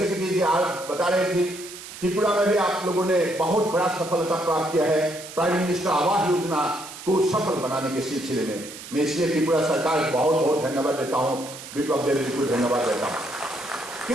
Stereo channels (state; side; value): noise; right; hiss, 13 dB below the sound